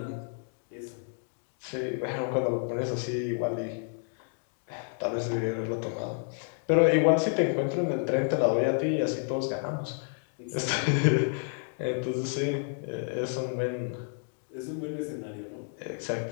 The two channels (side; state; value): right; silent; 56 dB below the other